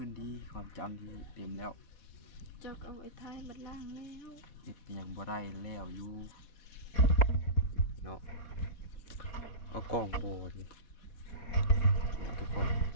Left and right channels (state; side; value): late; right; 4.2 ms